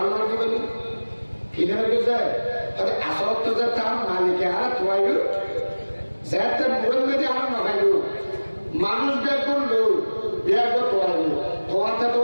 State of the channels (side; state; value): both; inverted; correlation -1.00